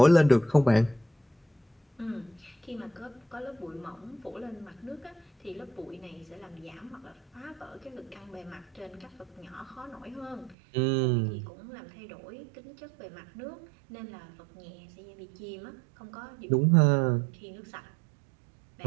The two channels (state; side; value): drops out; left; at 10.6 s